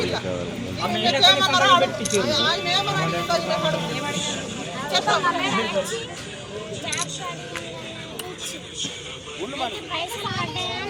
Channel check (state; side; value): identical; both; correlation 1.00